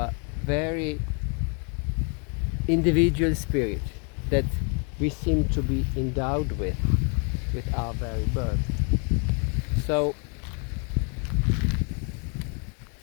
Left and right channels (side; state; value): right; quieter; 37.7 dB